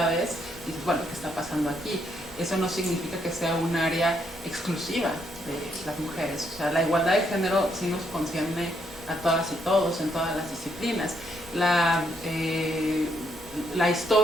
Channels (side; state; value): both; normal; correlation 0.74